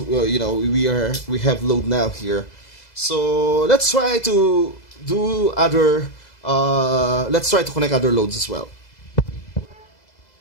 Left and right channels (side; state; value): right; late; 2.0 ms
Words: know, we have load now here. So let's try to do other. Let's try to connect other loads as well.